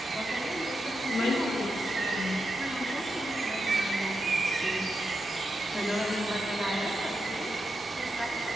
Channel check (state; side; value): normal; both; correlation 0.86